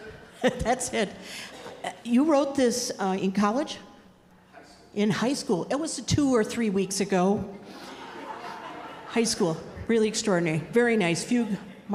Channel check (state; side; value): identical; both; correlation 1.00